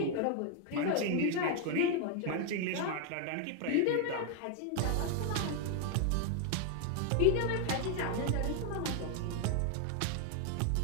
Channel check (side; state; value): both; different; correlation 0.01